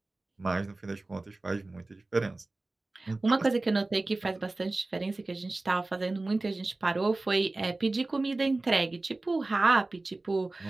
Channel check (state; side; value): quieter; left; 3.1 dB